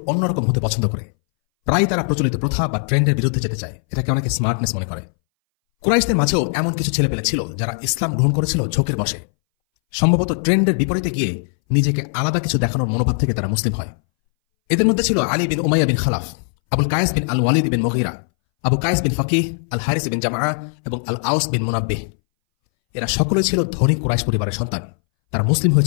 অন্যরকম হতে পছন্দ করে। প্রায় তারা প্রচলিত প্রথা বা ট্রেন্ডের বিরুদ্ধে যেতে চায়। এটাকে অনেকে স্মার্টনেস মনে করে। কুরাইশদের মাঝেও এমন কিছু ছেলেপেলে ছিল যারা ইসলাম গ্রহণ করেছিল ঝোঁকের বশে। সম্ভবত ট্রেন্ডের বিপরীতে গিয়ে নিজেকে আলাদা কিছু দেখানোর মনোভাব থেকে তারা মুসলিম হয়। এদের মধ্যে ছিল আলী বিন উমাইয়া বিন খালাফ, আবুল কায়েস বিন আল ওয়ালিদ বিন মুগীরা, আবু কায়েস বিন ফাকিহ, আল হারিস বিন জামআ এবং আল আউস বিন মুনাব্বিহ। এরা সকলেই ছিল ধনী কুরাইশ পরিবারের সন্তান। তারা মুসলিম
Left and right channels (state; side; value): silent; right; 63 dB below the other